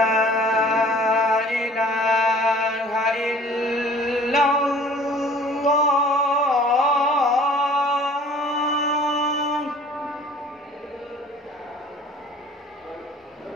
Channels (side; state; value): both; normal; correlation 0.50